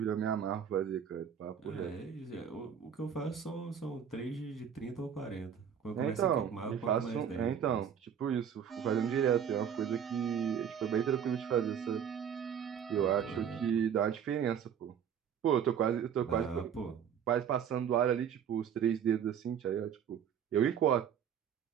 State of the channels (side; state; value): left; quieter; 8.2 dB